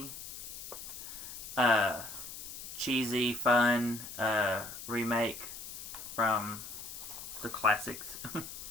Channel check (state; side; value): noise; left; hiss, 10 dB below the sound